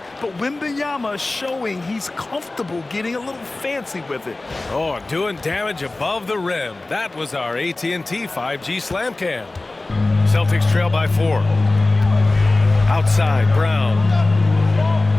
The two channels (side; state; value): right; quieter; 3.0 dB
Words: but Wembanyama is showing he's comfortable getting a little fancy with it. Oh, doing damage above the rim. That was our AT&T 5G slam cam. Celtics trail by 4. Outside, Brown.